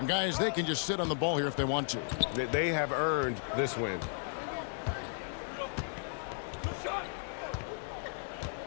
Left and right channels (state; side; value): silent; right; 55 dB below the other